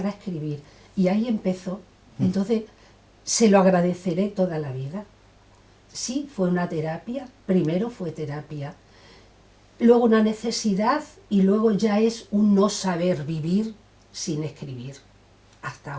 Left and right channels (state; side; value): identical; both; correlation 1.00